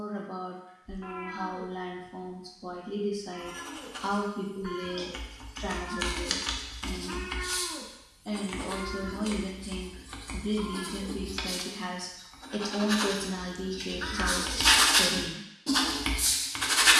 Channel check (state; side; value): identical; both; correlation 1.00